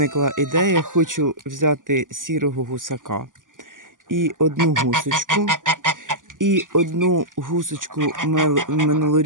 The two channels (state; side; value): late; left; 0.88 ms